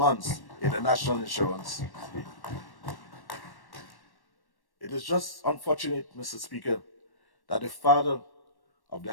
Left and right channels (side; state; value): right; late; 1.1 ms